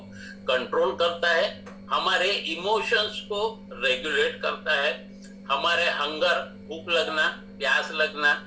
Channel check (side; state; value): both; identical; correlation 1.00